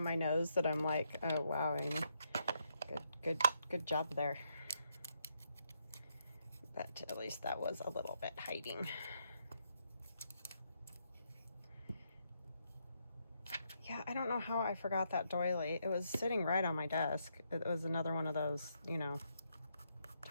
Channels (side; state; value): both; inverted; correlation -0.78